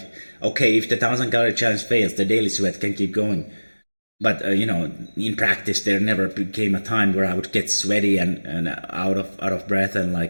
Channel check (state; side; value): inverted; both; correlation -1.00